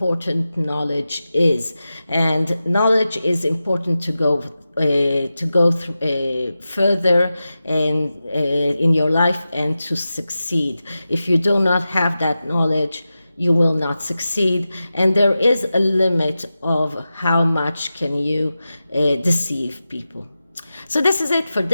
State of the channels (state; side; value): inverted; both; correlation -0.93